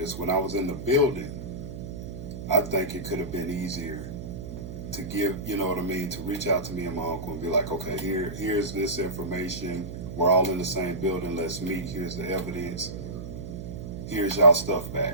When I was in the building, I think it could have been easier to give, you know what I mean, to reach out to me and my uncle and be like, okay, here's this information. We're all in the same building. Let's meet. Here's the evidence. Here's y'all stuff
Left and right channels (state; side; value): noise; right; hum, 9 dB below the sound